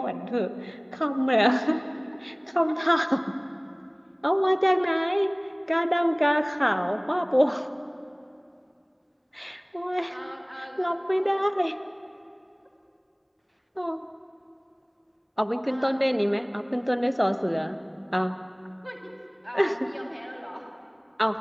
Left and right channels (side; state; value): both; identical; correlation 1.00